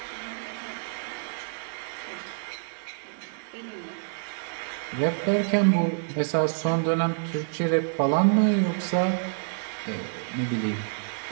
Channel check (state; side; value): silent; left; digital silence